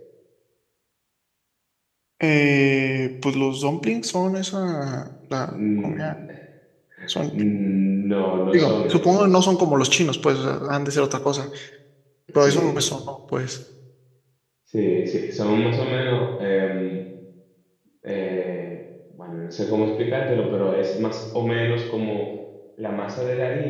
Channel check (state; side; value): identical; both; correlation 1.00